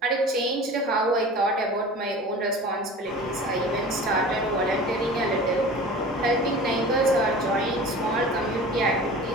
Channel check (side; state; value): both; normal; correlation 0.39